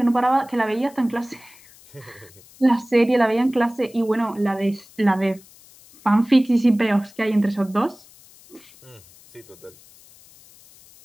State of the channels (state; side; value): noise; left; hiss, 25 dB below the sound